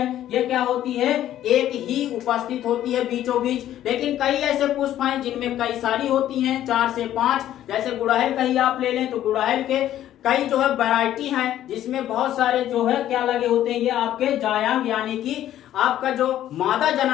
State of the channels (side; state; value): right; quieter; 12.2 dB